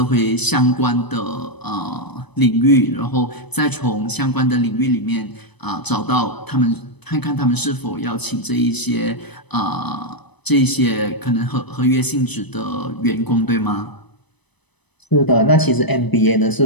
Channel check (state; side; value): late; right; 0.99 ms